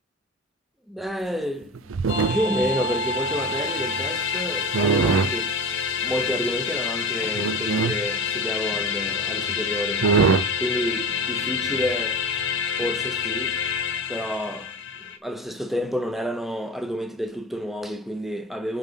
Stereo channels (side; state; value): both; normal; correlation 0.30